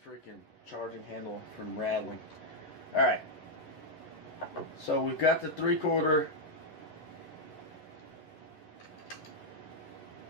freaking charging handle from rattling. Alright. So we've got the 3/4.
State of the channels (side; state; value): right; late; 11 ms